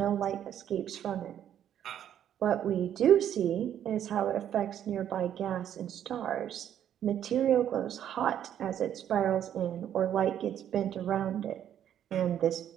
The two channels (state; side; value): quieter; left; 10.2 dB